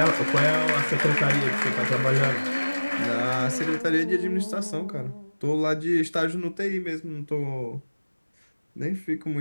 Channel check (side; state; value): both; inverted; correlation -1.00